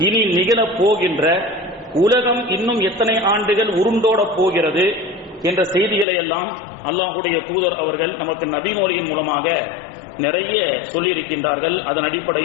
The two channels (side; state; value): right; drops out; at 6.1 s